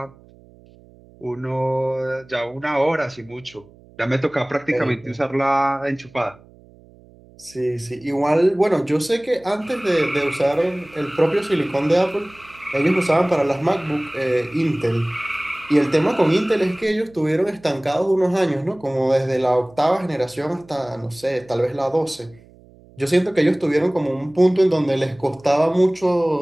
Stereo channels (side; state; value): right; noise; hum, 26 dB below the sound